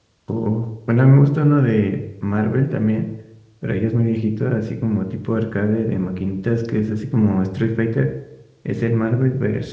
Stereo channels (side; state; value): both; identical; correlation 1.00